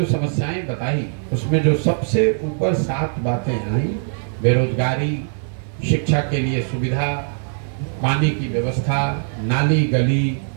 समस्याएं बताई उसमें जो सबसे ऊपर 7 बातें आई, बेरोजगारी, शिक्षा के लिए सुविधा, पानी की व्यवस्था, नाली गली,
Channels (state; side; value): silent; left; 56 dB below the other